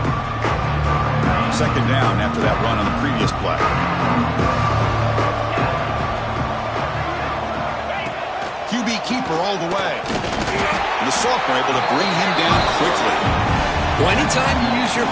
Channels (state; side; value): identical; both; correlation 1.00